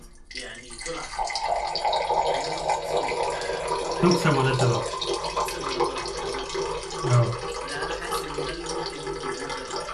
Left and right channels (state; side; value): identical; both; correlation 1.00